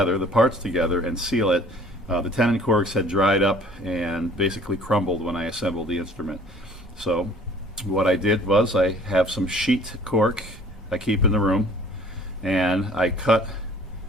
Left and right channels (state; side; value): normal; both; correlation 0.52